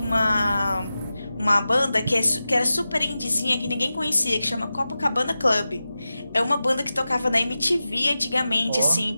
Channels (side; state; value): both; inverted; correlation -0.94